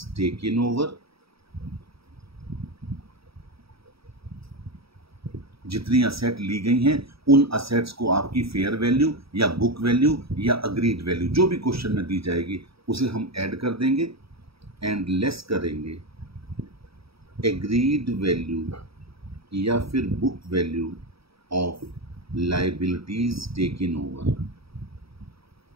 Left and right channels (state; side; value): late; left; 0.76 ms